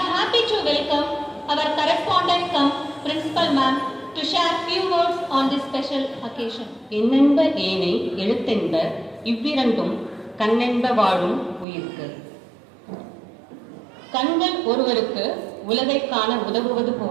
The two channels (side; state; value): left; drops out; at 11.7 s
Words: happy to welcome our correspondent cum principal ma'am to share few words on this special occasion. என்னென்ப ஏனை எழுத்தென்ப இவ்விரண்டும் கண்ணென்ப வாழும் உயிர்க்கு. கண்கள் ஒருவருக்கு உலகை காண உதவுவது